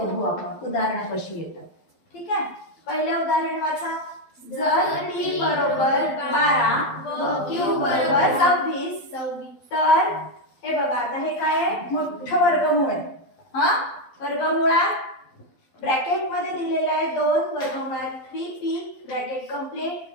आपण. उदाहरणं कशी येतात. ठीक आहे. पहिले उदाहरण वाचा. जर t बरोबर 12 व q बरोबर 26 तर हे बघा आता हे काय आहे? मोठं वर्गमूळ आहे. हा वर्गमुळात ब्रॅकेट मध्ये दिलेला आहे 2 वर्गमुळात 3p ब्रॅकेट कंप्लीट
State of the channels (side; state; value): right; late; 12 ms